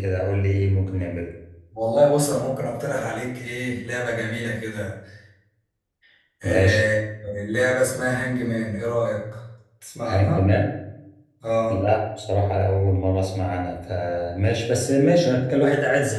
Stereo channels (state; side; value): identical; both; correlation 1.00